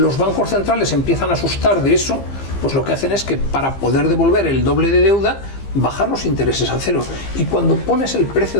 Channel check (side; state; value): right; late; 15 ms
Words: bancos centrales empiezan a asustar de eso, pues lo que hacen es que para poder devolver el doble de deuda, bajar los intereses a cero. Y cuando pones el precio